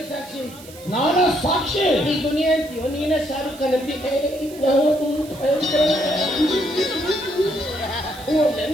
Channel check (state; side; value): noise; right; hiss, 19 dB below the sound